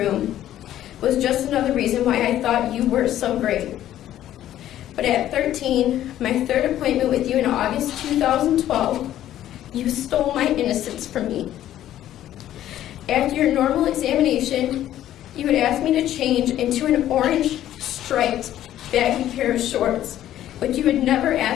was just another reason why I thought you were so great. But at 13, my third appointment with you in August 2012, you stole my innocence from me. After your normal examination, you would ask me to change into an orange striped baggy pair of shorts, which you had never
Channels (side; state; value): right; quieter; 12.4 dB